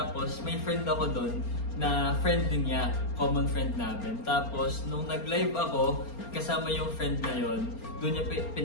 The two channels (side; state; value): right; late; 4.3 ms